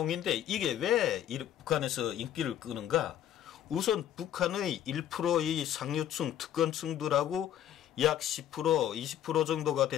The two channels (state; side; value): quieter; right; 10.9 dB